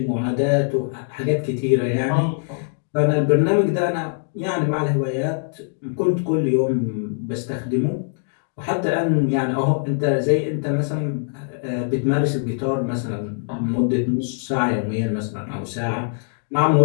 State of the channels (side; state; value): right; silent; digital silence